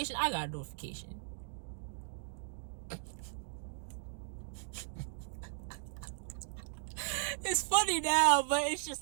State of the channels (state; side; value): silent; left; digital silence